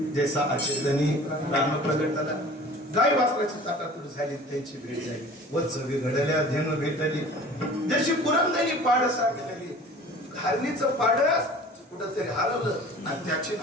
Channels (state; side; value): normal; both; correlation 0.44